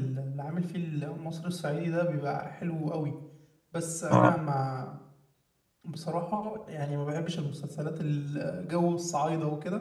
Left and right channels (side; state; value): both; identical; correlation 1.00